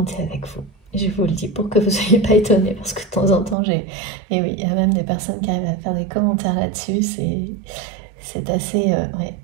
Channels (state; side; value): drops out; left; at 3.6 s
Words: thé avec vous. Je vous le dis pour que vous ne soyez pas étonnés, parce que de temps en temps, et oui, il y a même des personnes qui arrivent à faire des commentaires là-dessus, c'est assez... ouais,